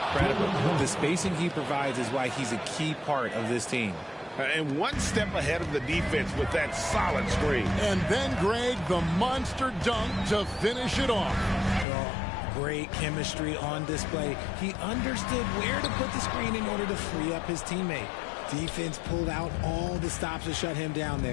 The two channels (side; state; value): right; drops out; at 11.9 s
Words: The spacing he provides is why he's a key part of this team. And one step ahead of the defense with that solid screen. And then, Greg, the monster dunk to finish it off. Great chemistry on display. He understood where to put the screen in order to free up his teammate. Defense pulled out all the stops to shut him down